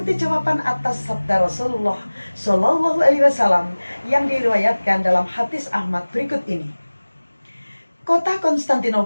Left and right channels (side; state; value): both; inverted; correlation -1.00